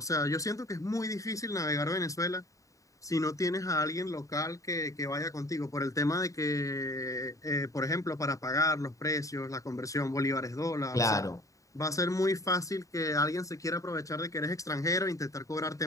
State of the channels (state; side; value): late; right; 0.16 ms